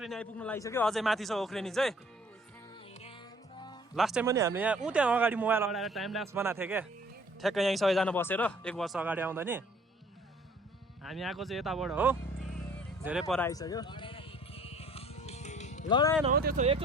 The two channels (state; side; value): normal; both; correlation 0.55